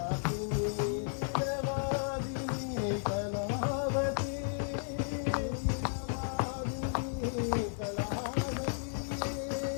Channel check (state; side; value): silent; right; digital silence